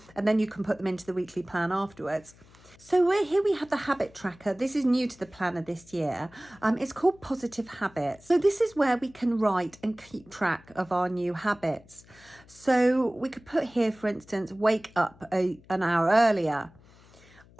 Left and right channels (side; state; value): left; noise; hum, 26 dB below the sound